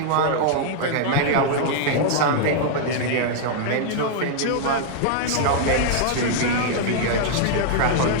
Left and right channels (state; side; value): different; both; correlation -0.01